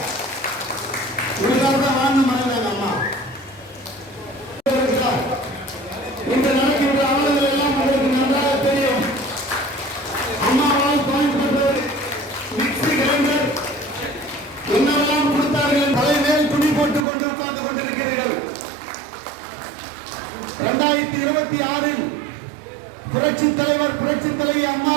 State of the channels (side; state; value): left; drops out; at 17.1 s